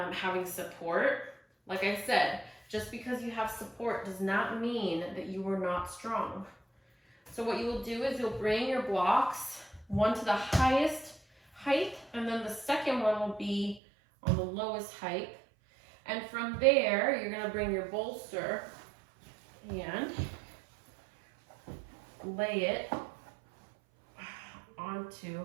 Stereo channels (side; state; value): left; drops out; at 13.8 s